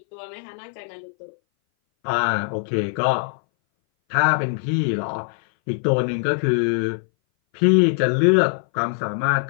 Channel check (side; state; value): right; silent; 60 dB below the other